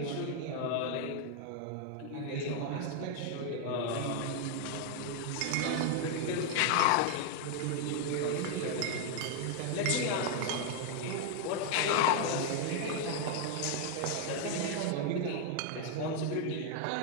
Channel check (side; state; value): both; different; correlation 0.00